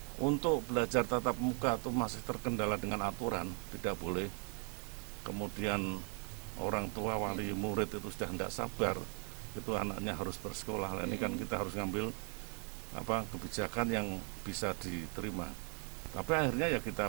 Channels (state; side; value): quieter; left; 39.3 dB